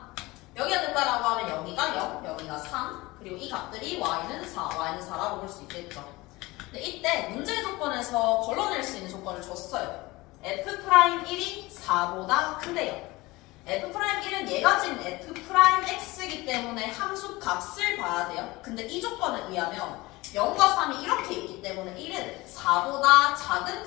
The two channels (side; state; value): right; quieter; 21.1 dB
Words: 여기가 된다라고 하면 여기가 0, 여기가 3. 그리고 이 값들이 y는 4, y는 4라고 볼 수 있겠죠. 근데 이때 문제 조건에서 걸러낼 수 있는 조건을 줬어요. f'1이 4보다 큰데요. f'1은 얘가 지금 f'x이기 때문에 함수 값을 봐야 돼요. 근데 이 조건에 의하면 0과 3이 이렇게 있기 때문에 1은 4보다 작은